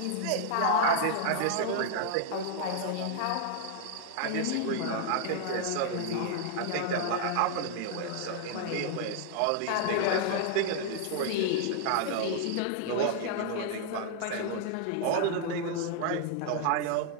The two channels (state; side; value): different; both; correlation 0.00